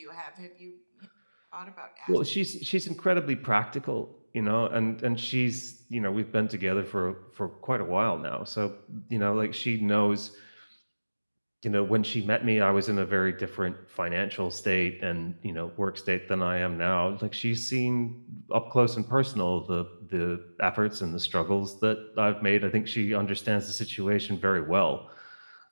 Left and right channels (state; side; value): inverted; both; correlation -1.00